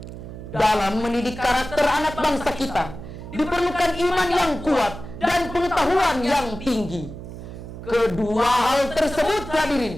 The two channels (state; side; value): noise; right; hum, 12 dB below the sound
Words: Dalam mendidik karakter anak bangsa kita, diperlukan iman yang kuat dan pengetahuan yang tinggi. Kedua hal tersebut,